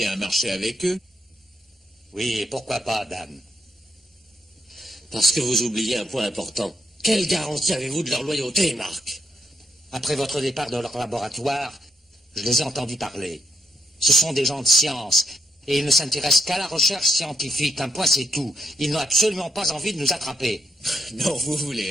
un marché avec eux? Oui, et pourquoi pas, Dan? Parce que vous oubliez un point important. Quelle garantie avez-vous de leur loyauté, Marc? Après votre départ de leur laboratoire, je les ai entendus parler. Ce sont des gens de science, et ils ne s'intéressent qu'à la recherche scientifique. Un point, c'est tout. Ils n'ont absolument pas envie de nous attraper. Non, vous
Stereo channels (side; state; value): both; normal; correlation 0.78